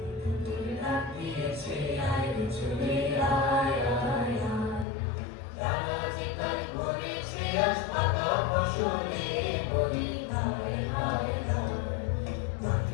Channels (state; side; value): drops out; right; at 4.9 s